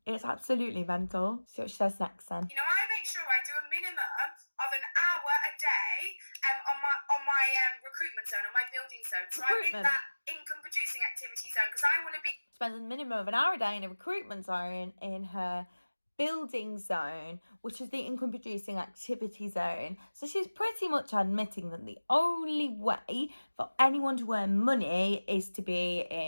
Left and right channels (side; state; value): both; inverted; correlation -1.00